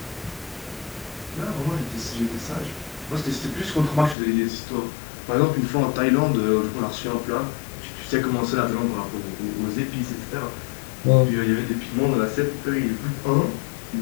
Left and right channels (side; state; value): right; drops out; at 4.2 s